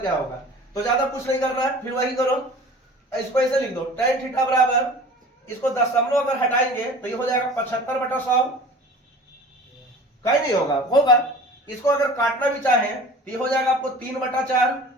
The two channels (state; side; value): normal; both; correlation 0.42